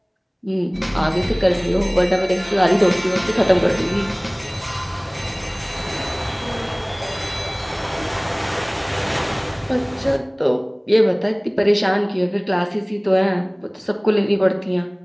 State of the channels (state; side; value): identical; both; correlation 1.00